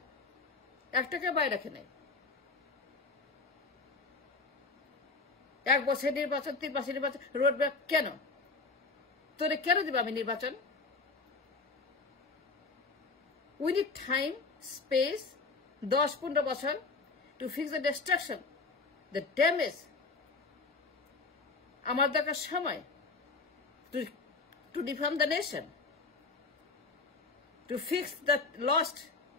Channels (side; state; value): right; quieter; 4.0 dB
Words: একটাকে বাইরে রাখে নাই 1 বছর নির্বাচন 3 মাসের নির্বাচন রোড ব্যাক কেন তোরে কেন দিব আমি নির্বাচন we need time space 10-15 বছর to fix the destruction the damage আমার দরকার সময় to reform the nation to fix the lost